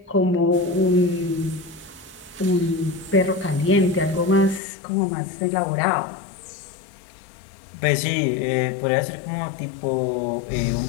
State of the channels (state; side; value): drops out; right; at 4.6 s